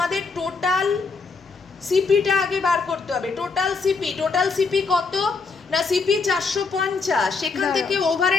টোটাল সিপিটা আগে বার করতে হবে। টোটাল সিপি কত না, সিপি 450, সেখান থেকে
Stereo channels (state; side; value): quieter; right; 4.5 dB